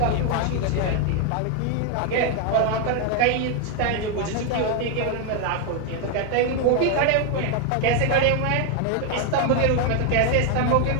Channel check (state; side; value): different; both; correlation 0.01